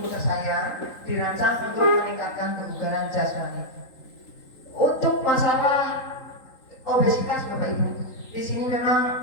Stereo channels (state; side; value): late; right; 3.8 ms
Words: tersayang dirancang untuk meningkatkan kebugaran jasmani. Untuk masalah obesitas Bapak Ibu, di sini